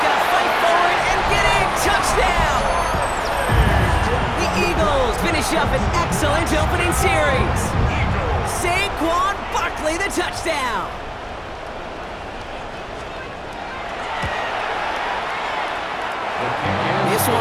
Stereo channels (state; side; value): identical; both; correlation 1.00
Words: going to fight forward and get a touchdown. The Eagles finish up an excellent opening series. Saquon Barkley, the touchdown. This